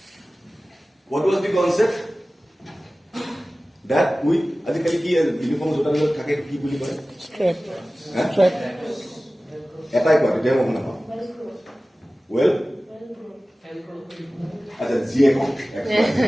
What was the concept? That we, আজিকালি কি uniform জোতাবিলাক থাকে কি বুলি কয়? Strap. হা? Strap. এটাই কয়, তেতিয়া মই শুনা পাওঁ। Well, আচ্ছা, GX.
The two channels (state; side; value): normal; both; correlation 0.97